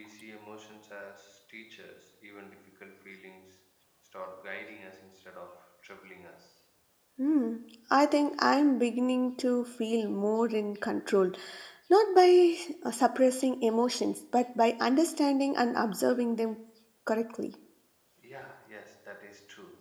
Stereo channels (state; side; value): identical; both; correlation 1.00